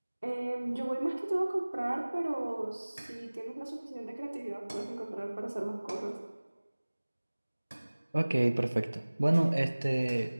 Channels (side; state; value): both; inverted; correlation -1.00